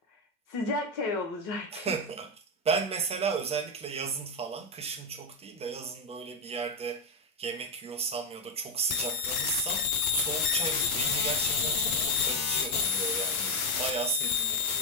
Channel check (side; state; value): both; normal; correlation 0.09